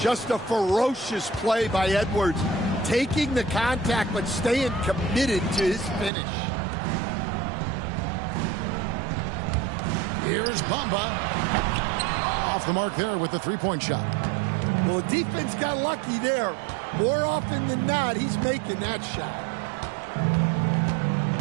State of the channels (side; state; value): left; drops out; at 6.1 s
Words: Just a ferocious play by Edwards. Taking the contact but staying committed to his finish. Here's Bamba. Off the mark there with the three-point shot. Well, the defense got lucky there. More often than not, he's making that shot.